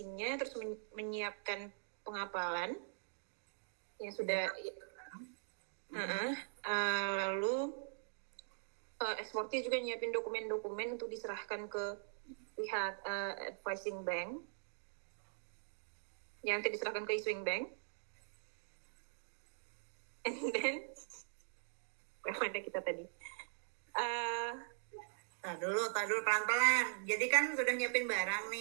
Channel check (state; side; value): silent; left; digital silence